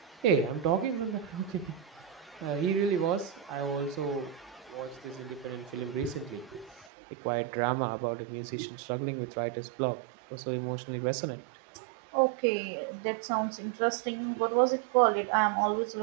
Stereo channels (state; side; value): drops out; left; at 6.9 s